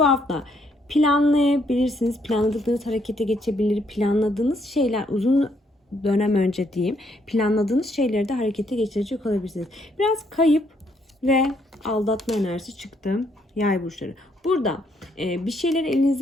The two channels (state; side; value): normal; both; correlation 0.71